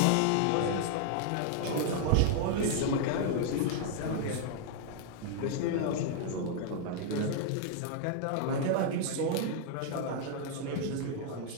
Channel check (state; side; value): different; both; correlation 0.00